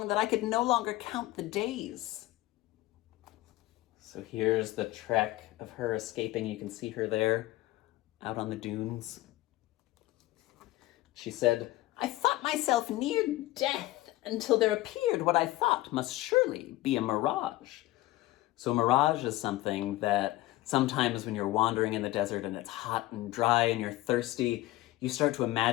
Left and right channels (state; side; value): quieter; right; 17.4 dB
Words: that I could no longer count the days." So here's the trek of her escaping. You can see her there, out on the dunes. She said, "I thought myself near death until there appeared what I thought must surely be a mirage." So a mirage is something that Sometimes when you're wandering in the desert and it's hot and dry and you're thirsty, you start to